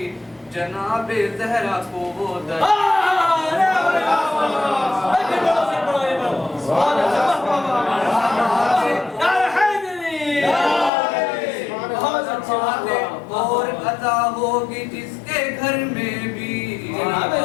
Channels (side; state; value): right; drops out; at 10.9 s